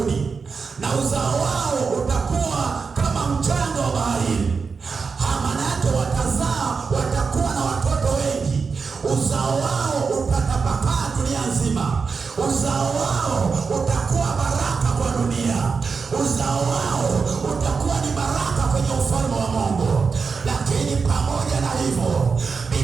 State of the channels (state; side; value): quieter; left; 5.1 dB